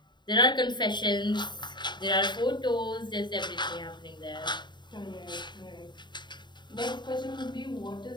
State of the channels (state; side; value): late; right; 0.22 ms